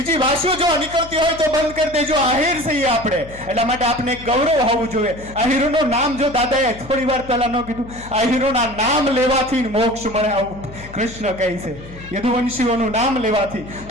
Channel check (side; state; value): left; noise; hum, 16 dB below the sound